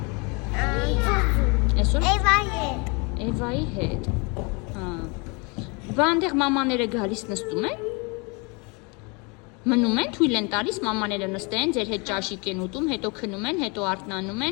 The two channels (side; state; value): right; quieter; 30.7 dB